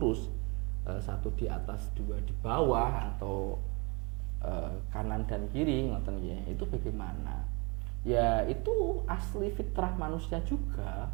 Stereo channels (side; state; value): left; quieter; 29.6 dB